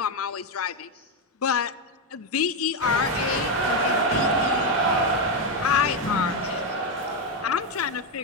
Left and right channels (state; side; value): normal; both; correlation 0.06